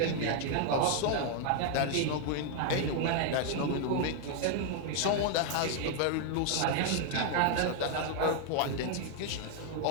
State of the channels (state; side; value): different; both; correlation 0.00